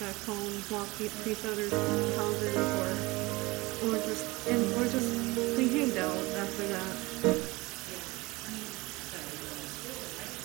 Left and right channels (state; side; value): quieter; left; 22.6 dB